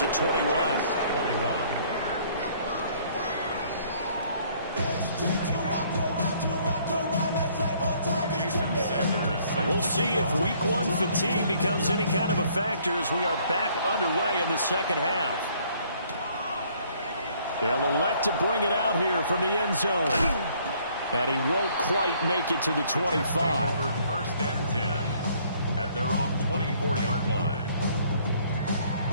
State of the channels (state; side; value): inverted; both; correlation -0.62